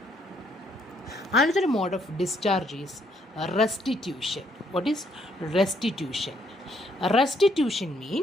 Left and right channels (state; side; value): normal; both; correlation 0.70